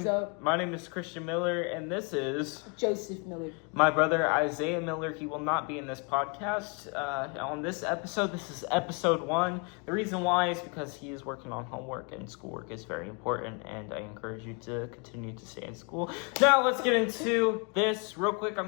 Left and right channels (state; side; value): quieter; right; 33.9 dB